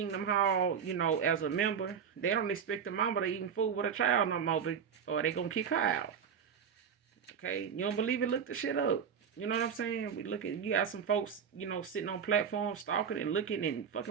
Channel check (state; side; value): quieter; left; 7.2 dB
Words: hall, as a member, they don't expect the mama to even fool with a child no more, or they gonna kick her out. Okay, you don't believe it? Look the shit up. You know what I'm saying? You got some folks, sitting on platforms, stalking and looking and